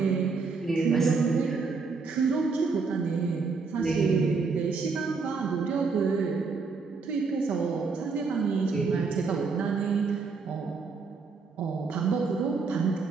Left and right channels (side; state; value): left; quieter; 4.6 dB